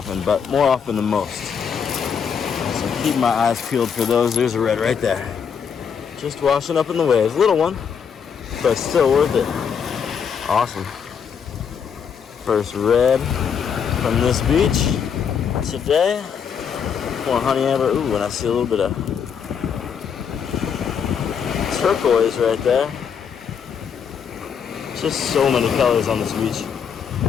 but more often than most. So keep my eyes peeled for those. There's a red right there. Just washing up in the waves. Little one, but still worth it. Awesome. First red from this beach today. More honey amber. Ooh, and I see a little bit of turquoise right there. Just so many colors on this beach.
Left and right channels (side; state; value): right; quieter; 7.1 dB